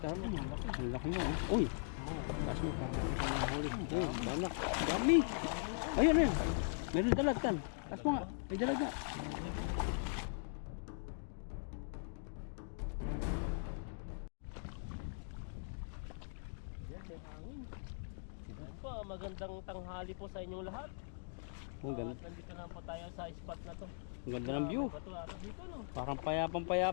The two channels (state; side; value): silent; right; digital silence